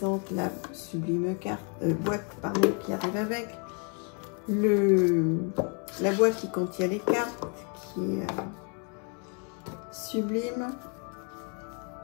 la sublime boîte qui arrive avec. La boîte qui contient les cartes, qui est sublime.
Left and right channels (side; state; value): right; quieter; 37.2 dB